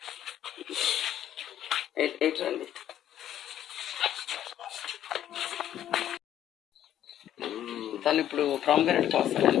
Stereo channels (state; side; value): quieter; right; 11.2 dB